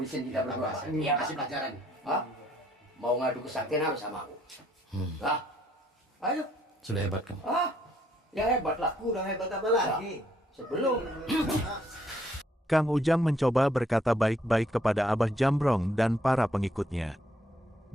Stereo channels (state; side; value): normal; both; correlation 0.68